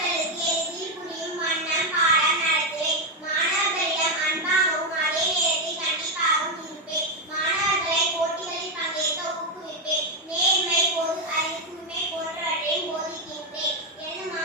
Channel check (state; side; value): normal; both; correlation 0.04